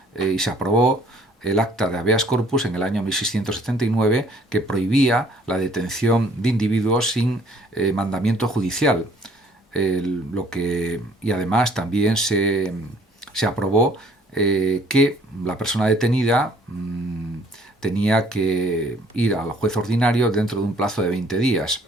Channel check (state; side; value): normal; both; correlation 0.59